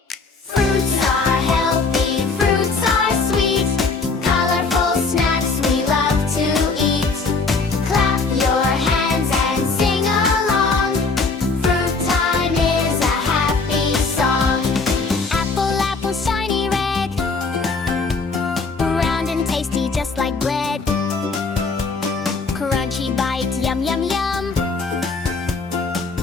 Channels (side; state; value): right; quieter; 4.1 dB